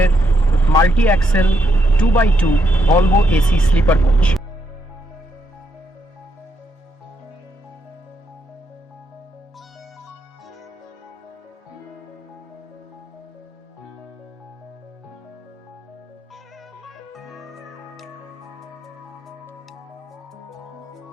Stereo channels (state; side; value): normal; both; correlation 0.79